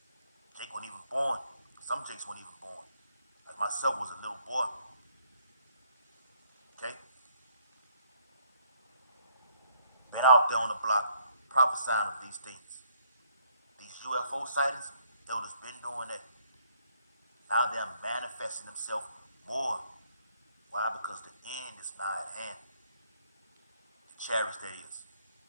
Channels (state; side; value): inverted; both; correlation -0.68